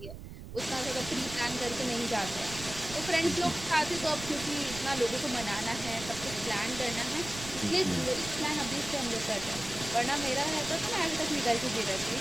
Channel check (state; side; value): noise; right; rumble, 12 dB below the sound